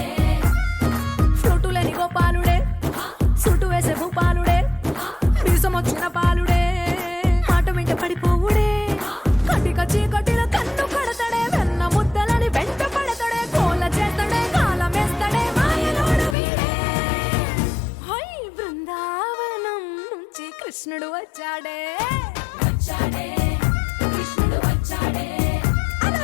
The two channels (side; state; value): right; drops out; at 16.4 s